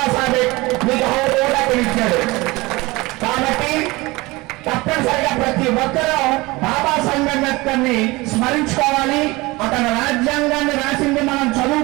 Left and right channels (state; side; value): quieter; left; 22.1 dB